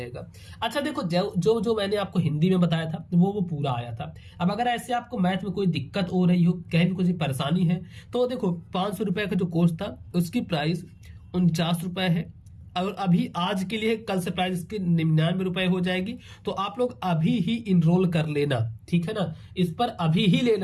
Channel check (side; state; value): both; identical; correlation 1.00